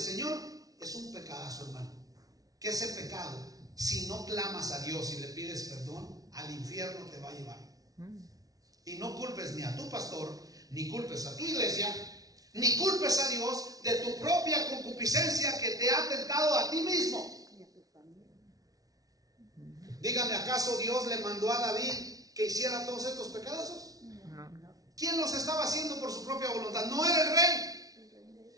del Señor es un pecadazo, hermano. ¿Qué es el pecado? Si no clamas a Dios y le pides perdón, al infierno te va a llevar. Y no culpes ni a tu pastor, ni culpes a tu iglesia, ni culpes a Dios de tu propia concupiscencia que te ha tentado a ti mismo. Dígame, ¿acaso Dios le mandó a David que hiciera todos estos pecadazos? ¿Quién los estaba haciendo por su propia voluntad? No era el rey.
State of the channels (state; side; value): late; left; 0.18 ms